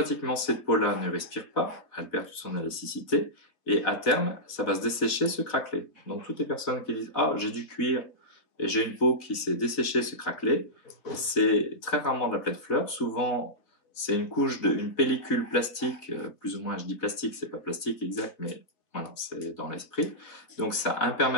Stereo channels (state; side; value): late; right; 4.1 ms